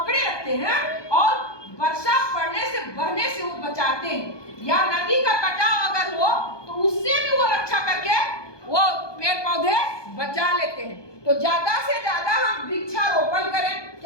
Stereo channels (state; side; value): late; right; 1.2 ms